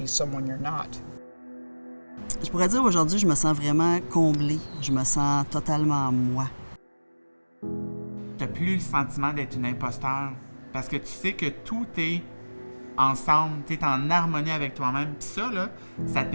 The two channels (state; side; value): inverted; both; correlation -1.00